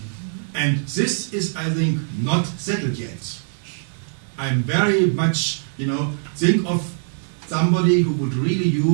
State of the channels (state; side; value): silent; left; digital silence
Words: And this is, I think, not settled yet. I'm very much, think of somebody who would really